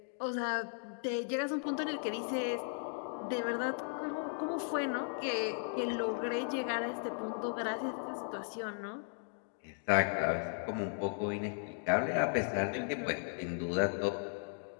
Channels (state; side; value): silent; right; 53 dB below the other